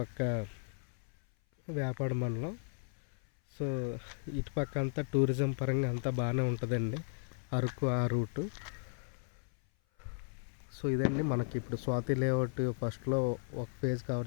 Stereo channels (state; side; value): silent; right; 54 dB below the other